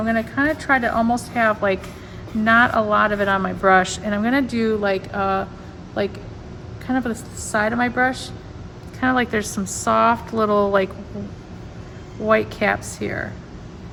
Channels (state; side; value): identical; both; correlation 1.00